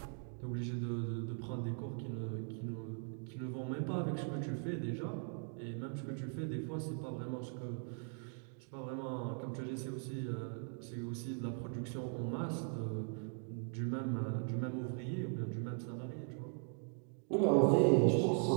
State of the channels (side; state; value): left; silent; 51 dB below the other